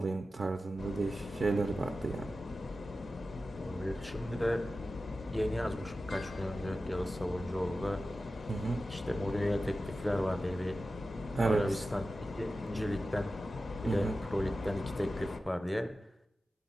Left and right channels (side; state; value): both; normal; correlation 0.93